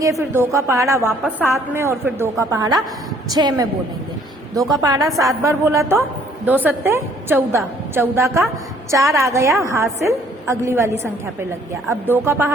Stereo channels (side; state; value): both; normal; correlation 0.60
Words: फिर 2 का पहाड़ा वापस 7 में, और फिर 2 का पहाड़ा 6 में बोलेंगे। 2 का पहाड़ा 7 बार बोला तो 2 सत्ते 14, 14 का 4 आ गया हासिल, अगली वाली संख्या पे लग गया। अब 2 का